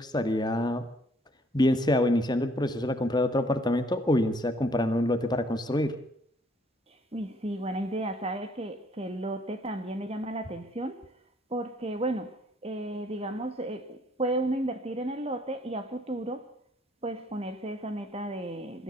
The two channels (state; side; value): normal; both; correlation 0.63